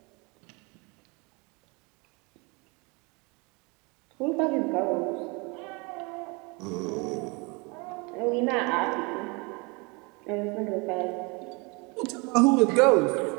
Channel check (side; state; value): left; quieter; 28.9 dB